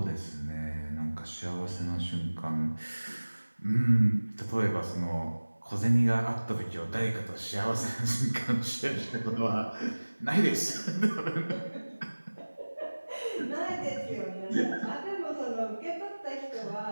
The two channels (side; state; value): both; inverted; correlation -1.00